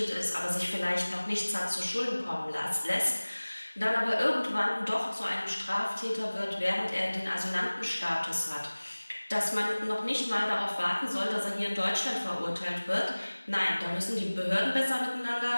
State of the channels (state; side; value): inverted; both; correlation -1.00